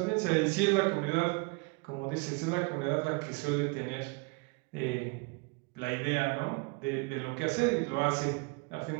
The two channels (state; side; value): quieter; left; 28.5 dB